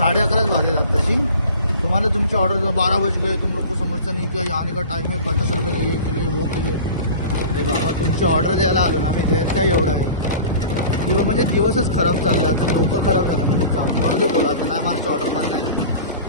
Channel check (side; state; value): both; inverted; correlation -0.40